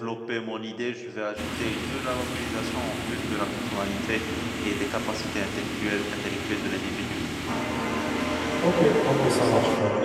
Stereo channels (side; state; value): both; identical; correlation 1.00